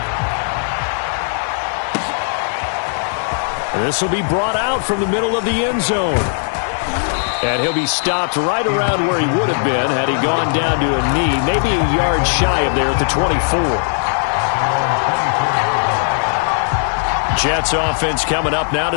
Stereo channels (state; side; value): silent; right; digital silence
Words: This will be brought out from the middle of the end zone. And he'll be stopped right around where he would have been had he gone down to a knee, maybe a yard shy of there at the 24. Jets offense coming up now